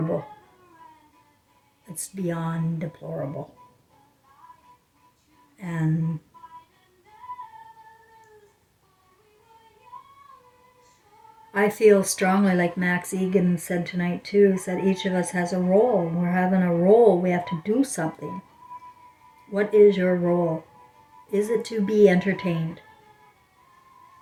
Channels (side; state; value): both; identical; correlation 1.00